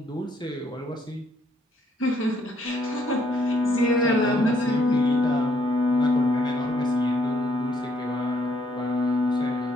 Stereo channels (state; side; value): normal; both; correlation 0.69